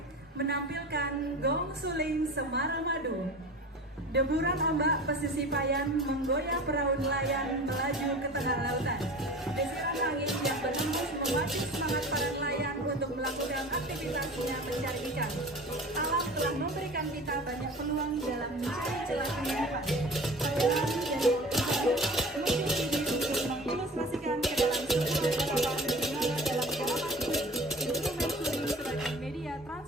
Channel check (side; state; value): both; normal; correlation 0.38